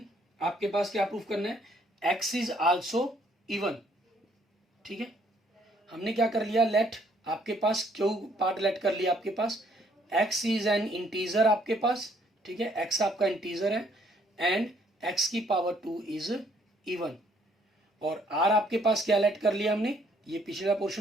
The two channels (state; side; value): normal; both; correlation 0.65